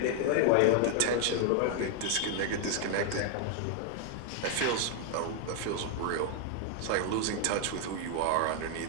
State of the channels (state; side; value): different; both; correlation 0.00